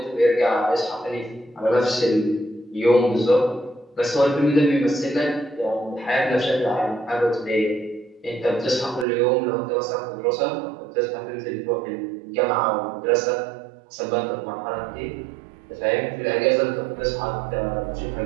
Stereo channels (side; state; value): left; drops out; at 9.1 s